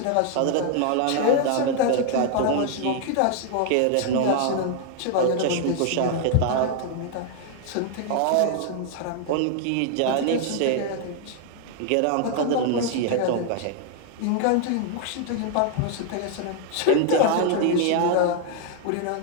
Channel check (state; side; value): different; both; correlation 0.00